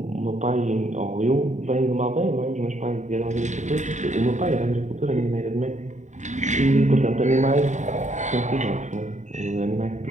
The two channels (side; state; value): left; late; 0.35 ms